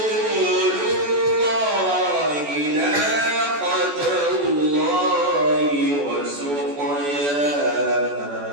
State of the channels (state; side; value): late; left; 14 ms